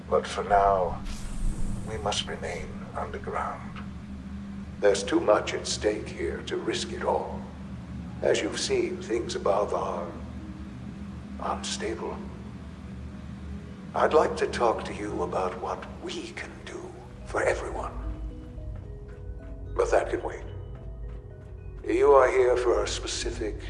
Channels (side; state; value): both; identical; correlation 1.00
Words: But for now, we must remain underground. There's too much at stake here to risk it all. As you've seen, things above are unstable. I'd like to talk to you about what we can do for everyone. But that can wait. You are here for a specific,